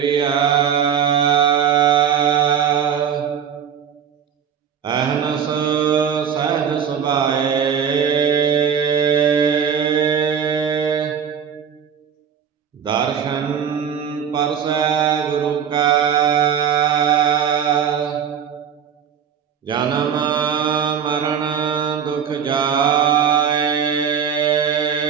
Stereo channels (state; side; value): quieter; left; 8.0 dB